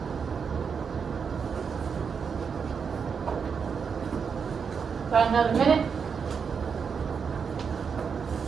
About another minute.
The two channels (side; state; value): left; quieter; 6.2 dB